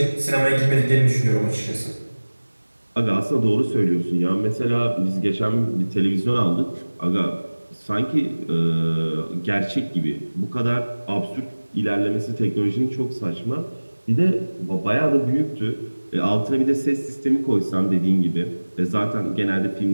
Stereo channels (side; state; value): both; inverted; correlation -1.00